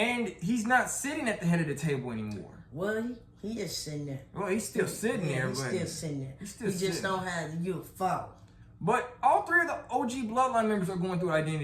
he's not sitting at the head of the table anymore. Well, he is sitting there. Well, he's still sitting there. He's but still sitting there. He just don't have the Fowler. But all three of the OG Bloodline members are going through an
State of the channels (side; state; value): both; identical; correlation 1.00